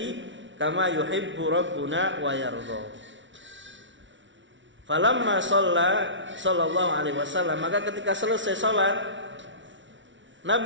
kama yuhibbu rabbuna wa yardha. Falamma sallallahu alaihi wasallam, maka ketika selesai salat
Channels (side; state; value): left; late; 0.55 ms